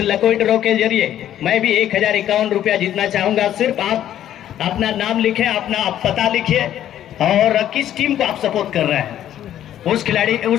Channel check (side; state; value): right; quieter; 11.4 dB